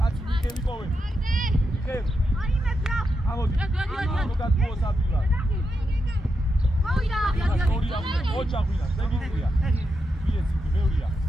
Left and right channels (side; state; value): both; normal; correlation 0.85